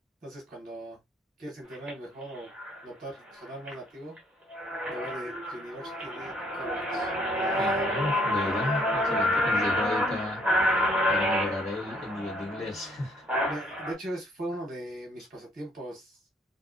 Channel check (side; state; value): both; normal; correlation 0.66